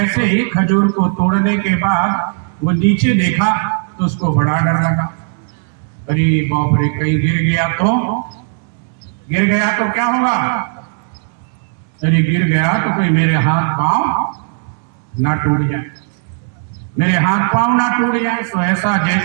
ही खजूर को तोड़ने के बाद वो नीचे देखा तो उसको बड़ा डर लगा। अरे बाप रे, कहीं गिर गया तो क्या होगा? अरे गिर गया तो कोई मेरे हाथ पांव ना टूट जाए, मेरे हाथ पांव ना टूट जाए। तो ऐसा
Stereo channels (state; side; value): silent; left; 61 dB below the other